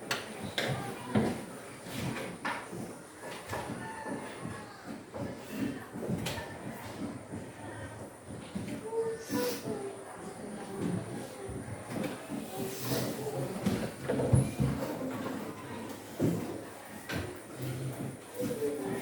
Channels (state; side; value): identical; both; correlation 1.00